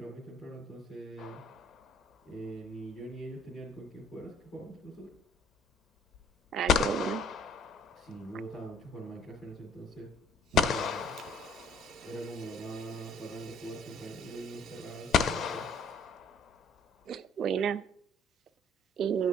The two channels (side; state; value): both; normal; correlation 0.57